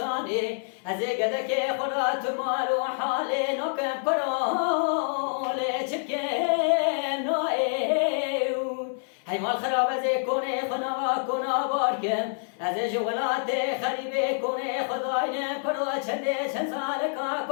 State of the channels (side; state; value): right; silent; 60 dB below the other